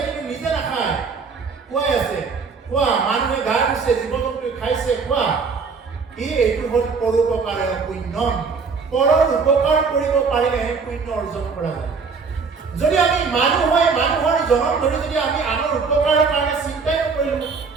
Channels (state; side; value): quieter; left; 5.1 dB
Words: কিন্তু নিজে নাখায়, খুৱাই আছে। খোৱা। মানুহে গা ধুইছে, জীৱ জন্তুৱে খাইছে, খোৱা। এইটো হ'ল পৰোপকাৰে পুণ্যম। পৰৰ উপকাৰ কৰিব পাৰিলেহে পুণ্য অৰ্জন কৰা যায়। যদি আমি মানুহ হৈ মানুহৰ জনম ধৰি যদি আমি আনৰ উপকাৰৰ কাৰণে চিন্তাই নকৰিলো,